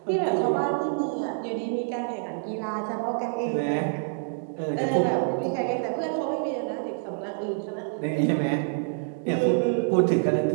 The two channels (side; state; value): left; silent; digital silence